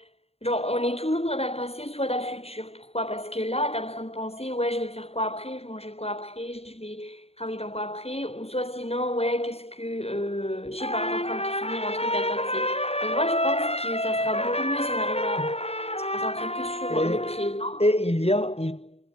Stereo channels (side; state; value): right; late; 0.29 ms